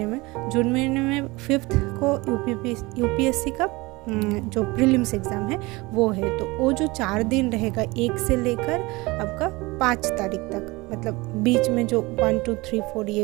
में 5th को यूपीएससी का जो प्रीलिम्स एग्ज़ाम है वो है। तो वो जो 4 दिन रहेगा, 1 से लेकर आपका 5 तारीख तक, मतलब बीच में जो 1 2 3 4 ये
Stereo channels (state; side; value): quieter; left; 23.1 dB